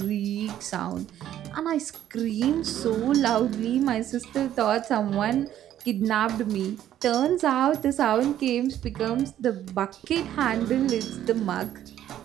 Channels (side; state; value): left; quieter; 11.6 dB